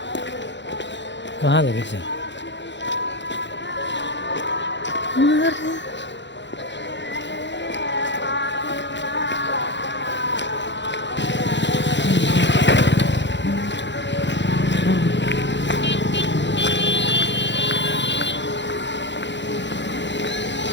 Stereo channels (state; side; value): late; right; 0.52 ms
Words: कहाँ लगे से